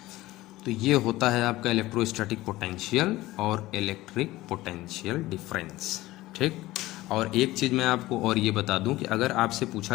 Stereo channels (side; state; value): right; quieter; 17.7 dB